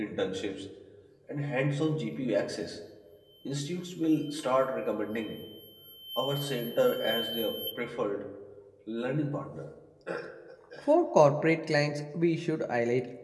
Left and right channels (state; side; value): identical; both; correlation 1.00